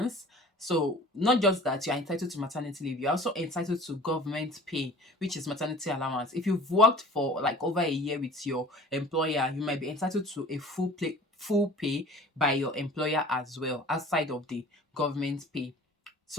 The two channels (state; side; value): normal; both; correlation 0.45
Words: So not just that you're entitled to maternity leave, you're also entitled to government pay, which is maternity allowance. If you've worked for like over a year with your employer, you might be entitled to a full pay by your employer as well, outside of the government pay.